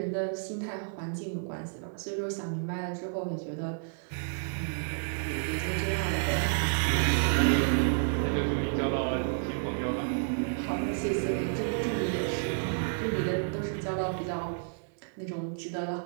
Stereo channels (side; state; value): left; silent; digital silence